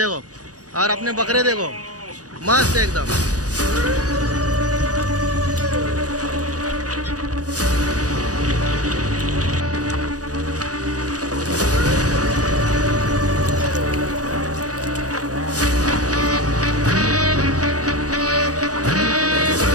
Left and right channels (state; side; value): late; left; 0.67 ms